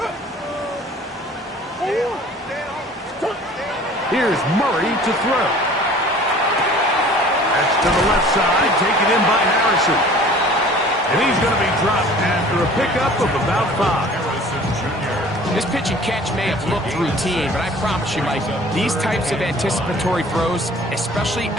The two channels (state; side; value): normal; both; correlation 0.48